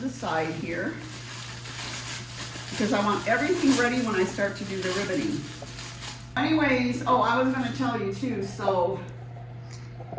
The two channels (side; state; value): both; identical; correlation 1.00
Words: side here, because I want everything ready when I start to do the ribboning. Anyways, oh, I was going to tell you too, so